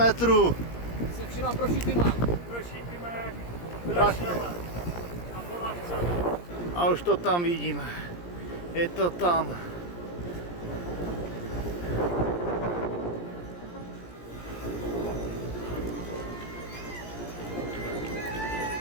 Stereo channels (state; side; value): late; right; 17 ms